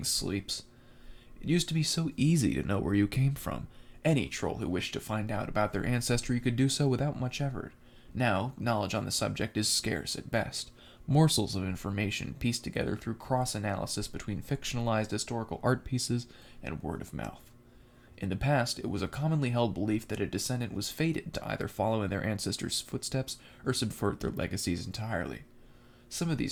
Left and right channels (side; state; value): both; identical; correlation 1.00